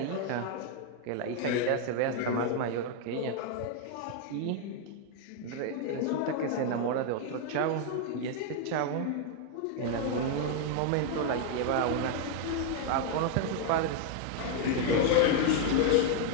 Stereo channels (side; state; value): both; different; correlation 0.00